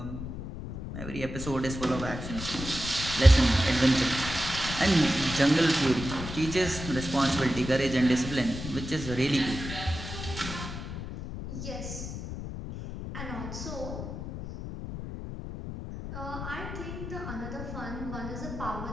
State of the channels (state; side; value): noise; left; rumble, 8 dB below the sound